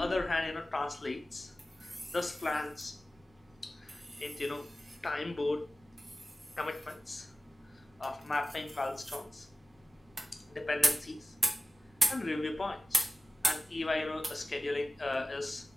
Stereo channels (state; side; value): normal; both; correlation 0.96